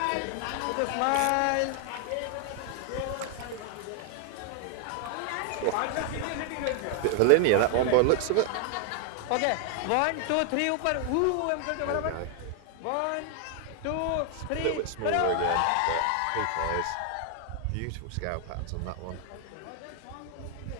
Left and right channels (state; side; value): different; both; correlation 0.00